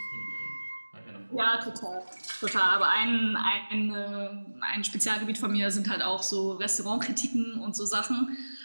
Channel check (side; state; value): both; inverted; correlation -1.00